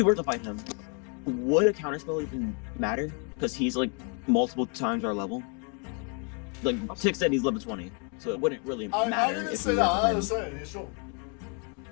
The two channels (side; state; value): right; quieter; 37.7 dB